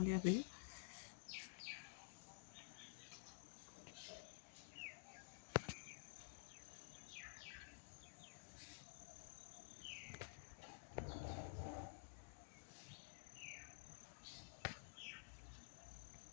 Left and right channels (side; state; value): right; silent; digital silence